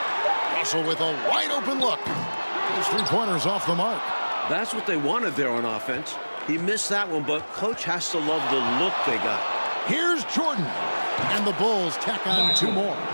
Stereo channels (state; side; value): inverted; both; correlation -1.00